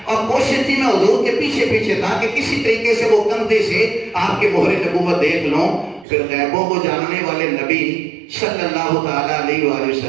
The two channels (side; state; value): left; drops out; at 6.1 s